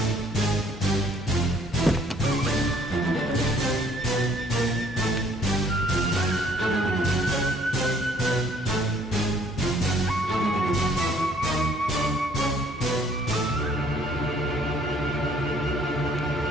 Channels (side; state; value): both; normal; correlation 0.60